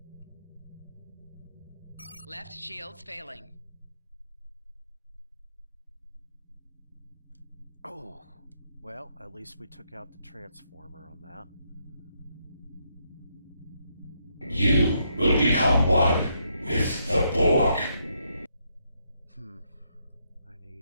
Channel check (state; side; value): inverted; both; correlation -0.77